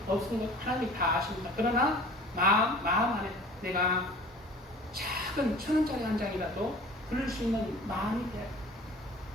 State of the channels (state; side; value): normal; both; correlation 0.45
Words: 없은 것 하나님이 다 아십니다. 그러나 마음 안에 내가 작은 1,000원짜리 한 장이라도 부를 수 있는 마음이 돼야 돼요.